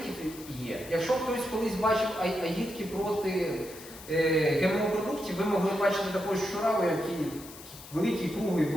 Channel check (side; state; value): left; noise; hiss, 16 dB below the sound